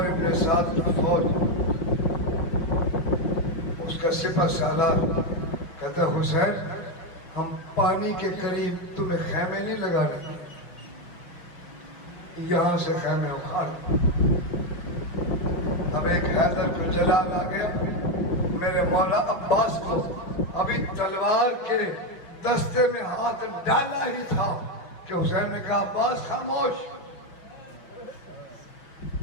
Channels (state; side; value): late; right; 5.6 ms